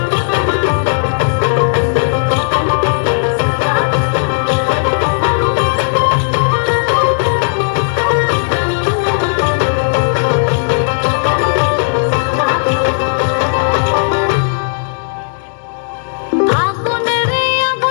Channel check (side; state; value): right; silent; digital silence